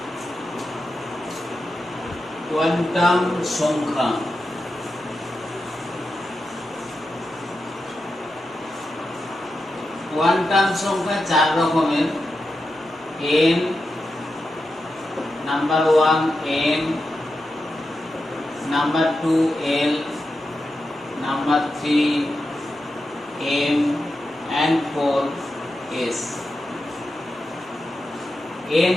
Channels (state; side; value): normal; both; correlation 0.89